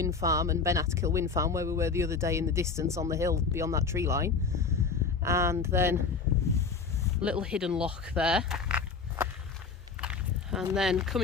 Farm and Ben Atkill Wind Farm, where we were the other day in the distance on the hill beyond that tree line. And then a little hidden loch there. And then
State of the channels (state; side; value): quieter; right; 4.9 dB